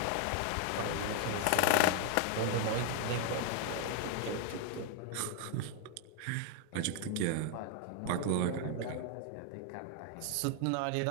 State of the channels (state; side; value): different; both; correlation 0.00